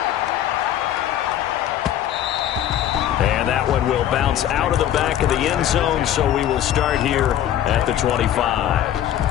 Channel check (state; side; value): quieter; right; 11.3 dB